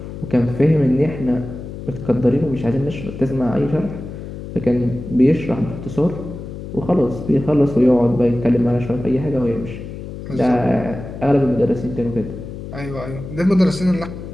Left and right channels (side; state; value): left; noise; hum, 10 dB below the sound